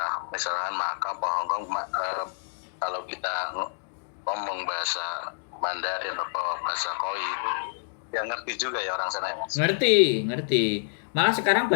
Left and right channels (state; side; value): silent; right; digital silence